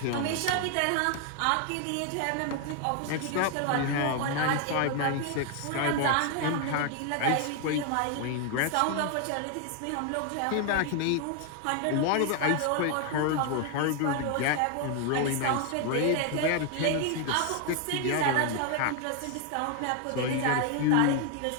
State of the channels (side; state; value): both; different; correlation 0.01